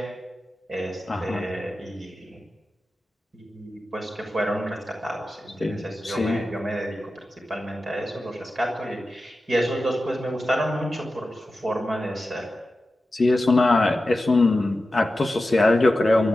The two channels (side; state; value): both; normal; correlation 0.93